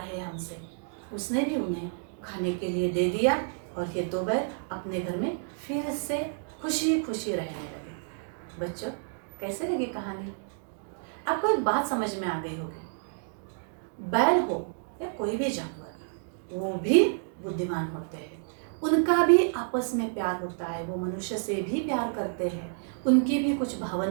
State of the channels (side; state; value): left; silent; digital silence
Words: है हमसे। उसने भी उन्हें खाने के लिए दे दिया और ये दो बैल अपने घर में फिर से खुशी खुशी रहने लगे। बच्चों, कैसे लगी कहानी? आपको एक बात समझ में आ गई होगी, बैल हो या कोई भी जानवर, वो भी बुद्धिमान होते हैं। उनका भी आपस में प्यार होता है, वो मनुष्य से भी प्यार करते हैं। उनकी भी कुछ